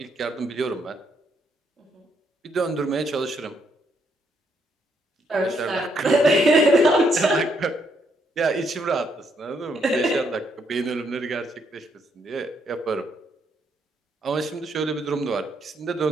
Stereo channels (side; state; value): both; normal; correlation 0.74